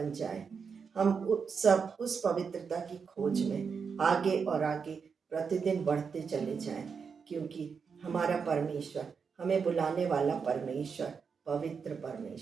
जाए। हम सब उस पवित्रता की खोज में आगे और आगे प्रतिदिन बढ़ते चले जाएं, क्योंकि हमारा परमेश्वर, हमें बुलाने वाला परमेश्वर पवित्र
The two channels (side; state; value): left; quieter; 5.9 dB